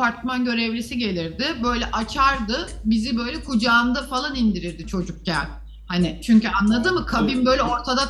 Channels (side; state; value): both; identical; correlation 1.00